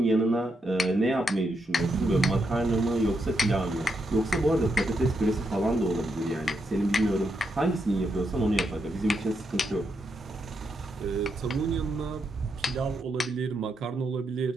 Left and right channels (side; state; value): both; normal; correlation 0.81